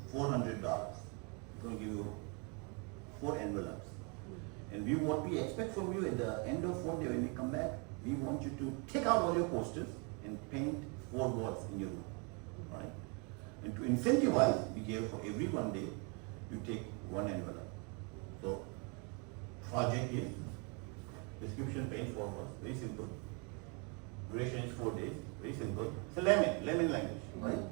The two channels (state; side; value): quieter; left; 34.1 dB